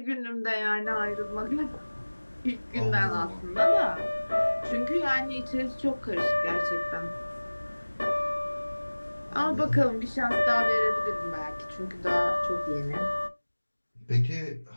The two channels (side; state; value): both; inverted; correlation -1.00